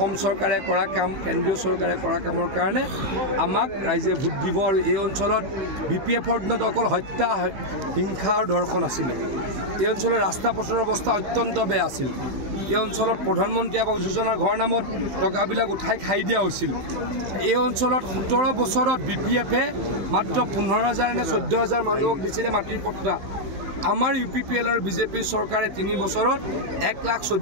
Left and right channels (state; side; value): late; left; 15 ms